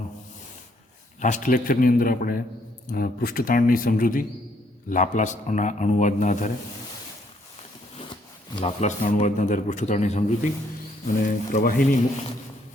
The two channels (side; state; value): both; normal; correlation 0.69